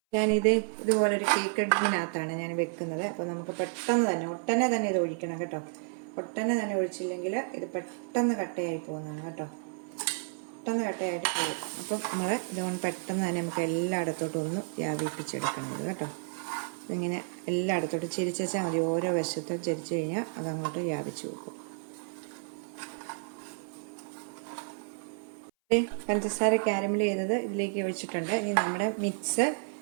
ഇതുപോലൊരു കേക്ക് ടിന്നിനകത്താണ് ഞാൻ വെക്കുന്നത്. അപ്പോൾ നമുക്ക് ഒട്ടനെ തന്നെ ഇത് ഒഴിക്കണം കേട്ടോ. ഒട്ടനെ തന്നെ ഒഴിച്ചില്ലെങ്കിൽ ഇത് പെട്ടെന്ന് കട്ടയായി പോകുന്നതാണ് കേട്ടോ. പെട്ടെന്ന് കട്ടയായിട്ട് പോകും. അപ്പം നമ്മൾ ഇതുകൊണ്ട് പെട്ടെന്ന് തന്നെ നമുക്ക് എല്ലായിടത്തോട്ടും ഒന്ന് വ്യാപിപ്പിച്ചെടുക്കണം ഇത് കേട്ടോ. ഇങ്ങനെ എല്ലായിടത്തോട്ടും ചെരിച്ച് വെച്ചാൽ മതി. ഓരോ വശത്തും ചെരിച്ച് കഴിഞ്ഞാൽ അതങ്ങോട്ട് വ്യാപിച്ച് വെക്കും. പഞ്ചസാര കാരമൽ ചെയ്തത് ഇതിലേക്ക് ഒഴിച്ചിട്ടുണ്ട്. ഇനി നമ്മുടെ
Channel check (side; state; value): left; silent; 57 dB below the other